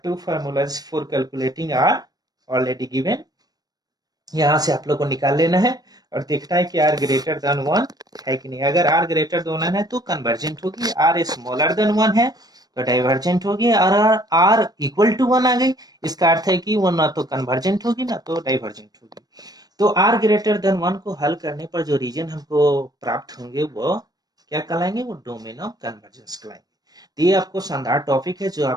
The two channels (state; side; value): late; left; 0.19 ms